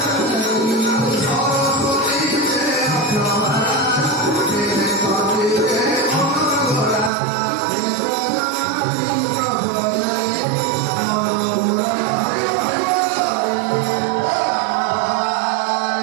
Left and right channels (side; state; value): left; drops out; at 7.1 s